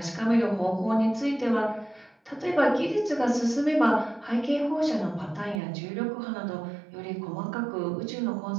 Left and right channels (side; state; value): left; drops out; at 5.6 s